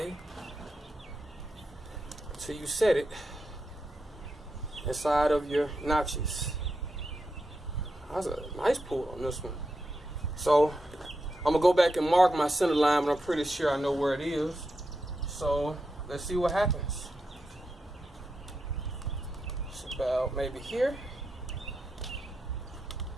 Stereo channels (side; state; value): both; normal; correlation 0.87